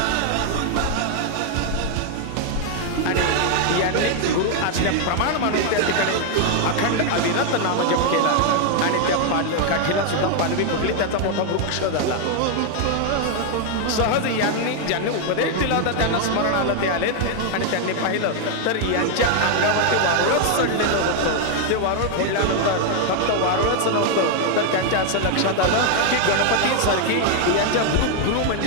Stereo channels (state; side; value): different; both; correlation 0.00